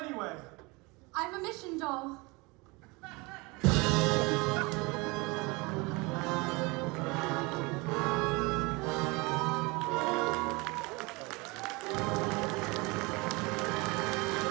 I'm a mission doll.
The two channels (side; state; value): left; quieter; 26.0 dB